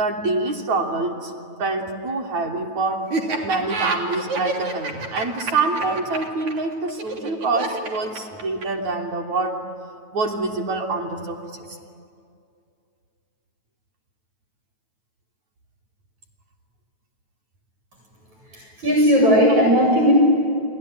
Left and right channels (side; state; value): left; late; 9.2 ms